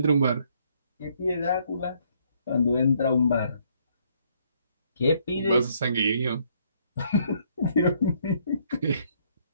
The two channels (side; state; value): both; inverted; correlation -0.68